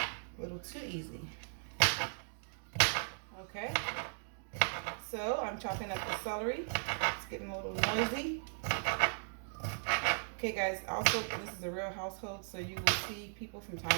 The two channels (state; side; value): silent; left; digital silence